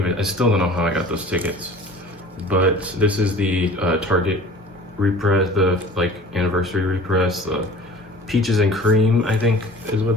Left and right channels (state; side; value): normal; both; correlation 0.44